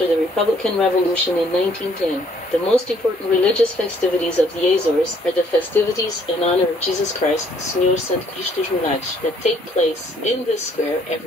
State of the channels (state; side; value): normal; both; correlation 0.64